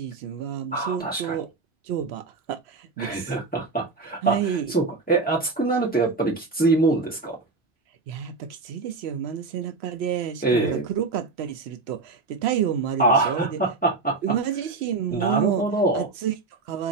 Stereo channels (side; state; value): left; quieter; 4.0 dB